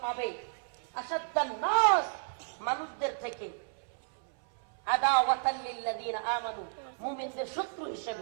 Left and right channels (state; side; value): silent; left; 56 dB below the other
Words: পাবে আসাদ্দান নাস, মানুষদের থেকে আদাওয়াতাল লিল্লাযিনা আমানু, মুমিনদের শত্রু